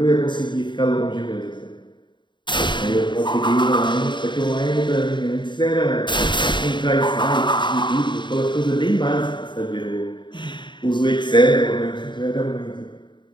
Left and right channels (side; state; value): right; late; 0.23 ms